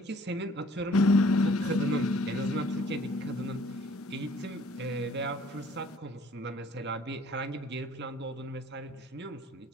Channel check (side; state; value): both; normal; correlation 0.57